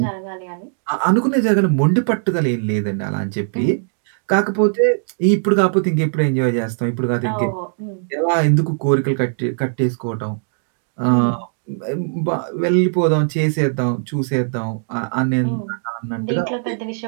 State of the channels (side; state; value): left; silent; digital silence